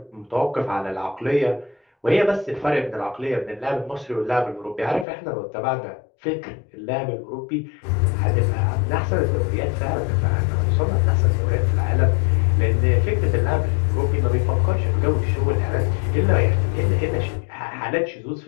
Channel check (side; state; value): right; drops out; at 5.1 s